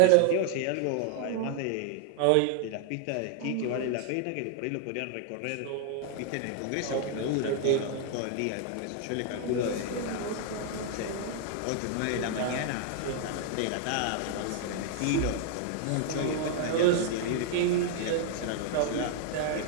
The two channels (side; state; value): both; different; correlation 0.00